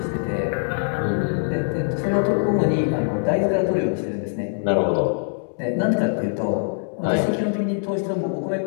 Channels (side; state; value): right; silent; digital silence